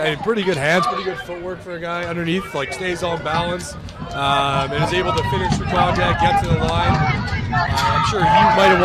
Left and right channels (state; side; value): identical; both; correlation 1.00